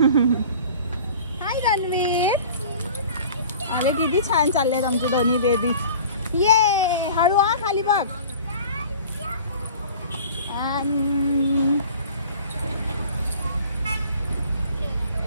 हाय रणवीर. अरे किती छान चाललेत आमचे दोन्ही बेबी. ये हळू हा खाली बघ.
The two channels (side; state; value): both; inverted; correlation -0.44